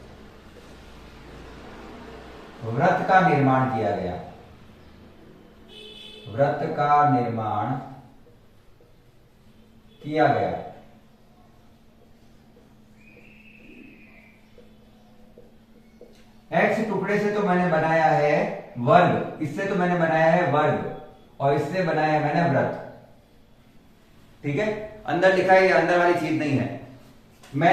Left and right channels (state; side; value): identical; both; correlation 1.00